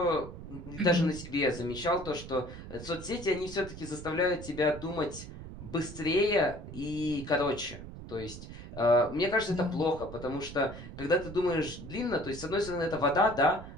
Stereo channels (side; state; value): right; noise; rumble, 12 dB below the sound